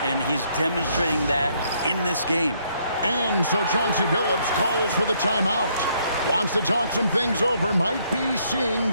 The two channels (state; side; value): inverted; both; correlation -0.70